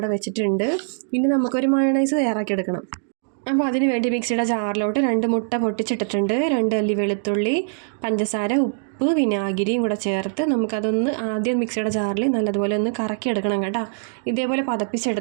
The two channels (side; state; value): left; silent; digital silence